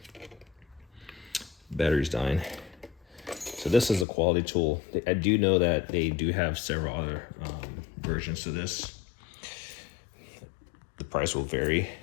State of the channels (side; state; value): right; drops out; at 4.0 s